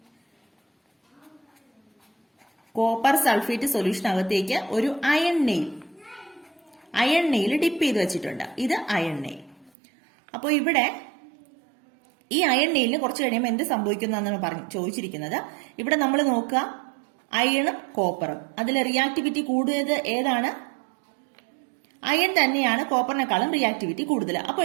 ഒരു അയൺ നെയിൽ ഡിപ്പ് ചെയ്ത് വെച്ചിട്ടുണ്ട്. ഇത് അയൺ നെയിൽ. അപ്പോൾ ഇവിടെ ഈ അയൺ നെയിലിന് കുറച്ച് കഴിയുമ്പോൾ എന്ത് സംഭവിക്കുന്നതെന്നാണ് ചോദിച്ചിരിക്കുന്നത്. ഇവിടെ നമ്മൾ നോക്കുക, അയണും കോപ്പറും, അതിൽ റിയാക്ടിവിറ്റി കൂടുതൽ ഏതാണ്? അയൺ തന്നെയാണ് കോപ്പറിനെക്കാളും റിയാക്ടിവിറ്റി കൂടുതൽ. അപ്പോൾ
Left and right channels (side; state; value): left; drops out; at 9.7 s